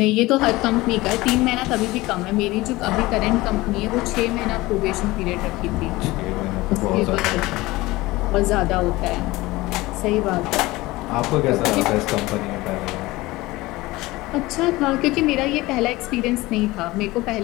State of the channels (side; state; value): right; quieter; 19.9 dB